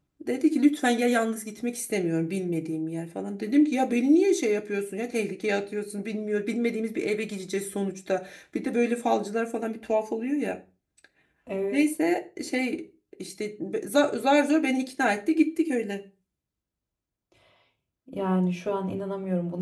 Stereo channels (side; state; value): both; identical; correlation 1.00